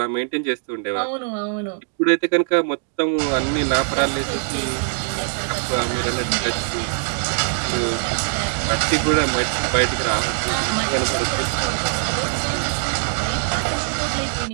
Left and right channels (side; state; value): left; silent; 64 dB below the other